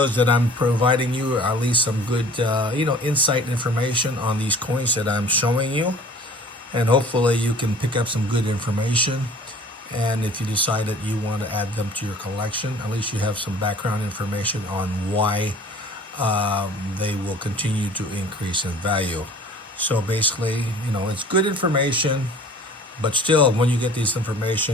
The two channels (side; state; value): both; normal; correlation 0.48